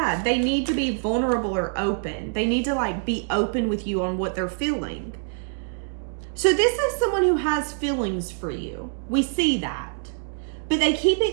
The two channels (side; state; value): left; silent; digital silence